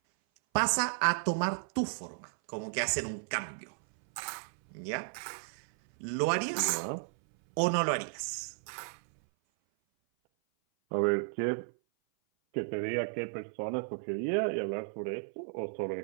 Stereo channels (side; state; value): left; silent; 55 dB below the other